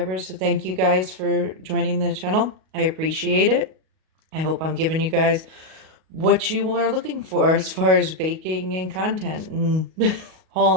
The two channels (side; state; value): left; late; 38 ms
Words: so thank you guys for joining the channel. I appreciate it. I hope I'm giving you guys what you are looking for as far as baking and content and